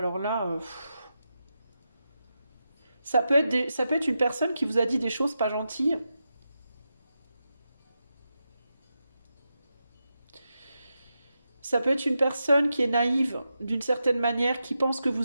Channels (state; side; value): inverted; both; correlation -0.88